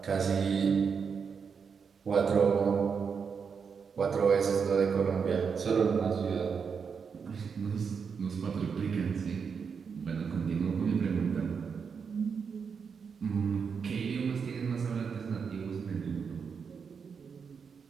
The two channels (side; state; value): left; quieter; 6.1 dB